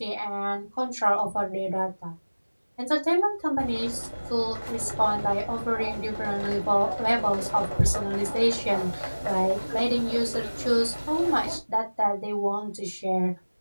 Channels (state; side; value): inverted; both; correlation -1.00